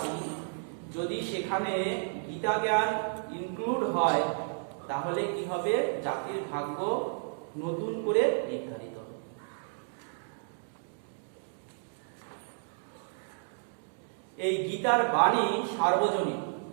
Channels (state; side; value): silent; left; digital silence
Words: যদি সেখানে গীতা জ্ঞান ইনক্লুড হয় তাহলে কি হবে? জাতির ভাগ্য নতুন করে নির্ধারিত হবে। এই গীতার বাণী সার্বজনীন,